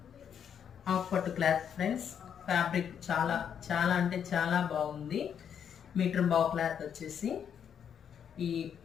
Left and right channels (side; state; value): right; quieter; 8.2 dB